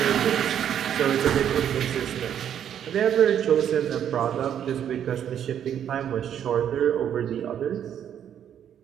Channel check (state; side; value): quieter; left; 9.5 dB